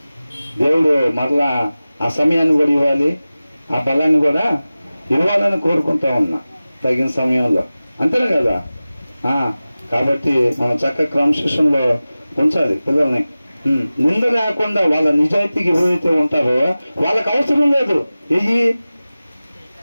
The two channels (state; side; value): inverted; both; correlation -0.97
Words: దేవుడు మరలా ఆ సమయాన్ని కూడా ఇవ్వాలి, ఆ బలాన్ని కూడా ఇవ్వాలని కోరుకుంటా ఉన్నా తగిన సమయంలో, అంతేనా కదా. కాబట్టి మనం చక్కగా క్రమశిక్షణలో ఉంచాలి పిల్లల్ని. నింద లేకుండా వాళ్ళ నిజాయితీకి ఎవరైతే ఉంటారో వాళ్ళకి అవసరం లేదు